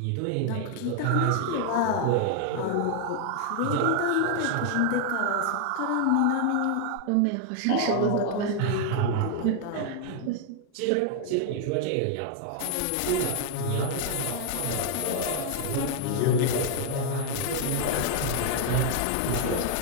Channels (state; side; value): different; both; correlation 0.00